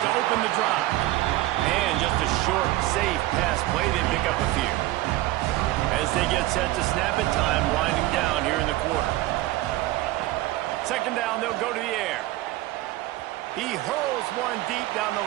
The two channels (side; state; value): left; quieter; 17.1 dB